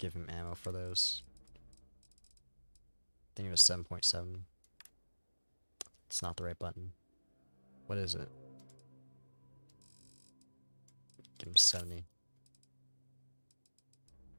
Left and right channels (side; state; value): both; inverted; correlation -1.00